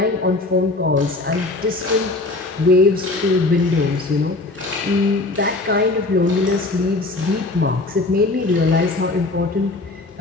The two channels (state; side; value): quieter; right; 3.1 dB